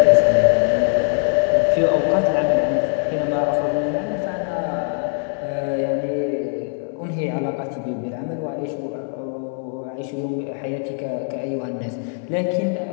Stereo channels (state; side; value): silent; right; 65 dB below the other